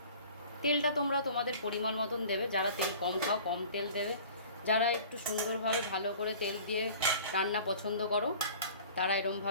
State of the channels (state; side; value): inverted; both; correlation -0.45